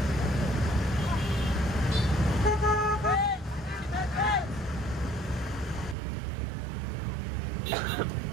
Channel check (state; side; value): drops out; left; at 6.0 s